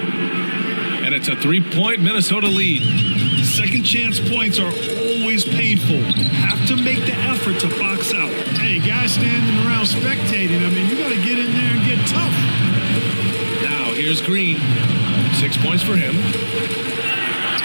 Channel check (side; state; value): both; inverted; correlation -1.00